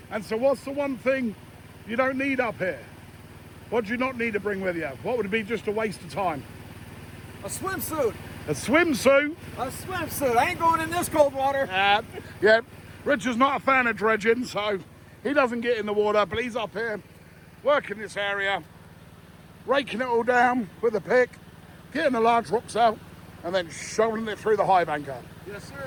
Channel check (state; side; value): identical; both; correlation 1.00